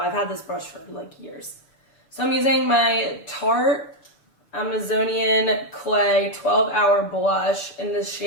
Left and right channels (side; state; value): right; late; 6.6 ms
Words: had this brush for like years. So I'm using my Tarte Amazonian Clay 12-Hour Blush in the